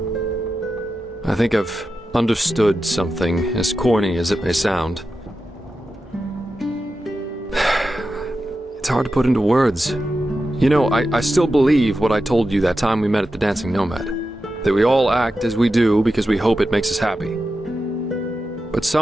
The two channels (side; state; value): both; normal; correlation 0.91